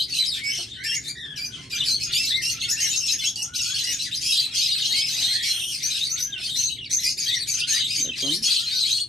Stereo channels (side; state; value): both; normal; correlation 0.68